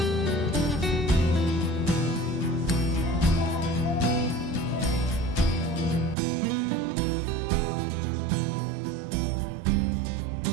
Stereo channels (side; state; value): left; drops out; at 6.2 s